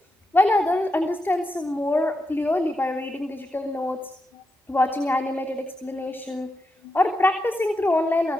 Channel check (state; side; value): normal; both; correlation 0.86